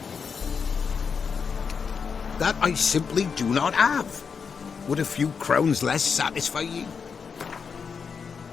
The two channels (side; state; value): right; quieter; 5.9 dB